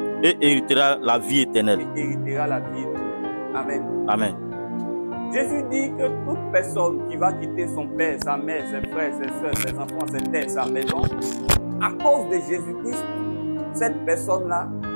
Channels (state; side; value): inverted; both; correlation -1.00